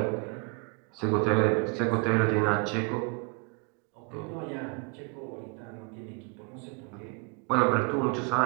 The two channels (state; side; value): quieter; left; 31.7 dB